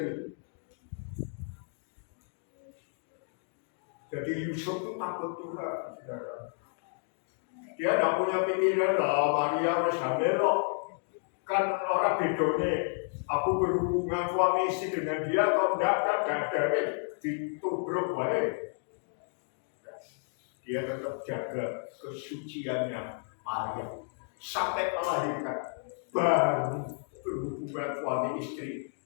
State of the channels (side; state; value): right; silent; 57 dB below the other